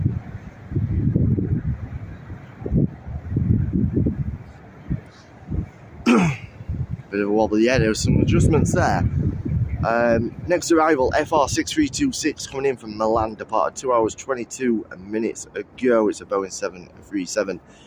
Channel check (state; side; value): identical; both; correlation 1.00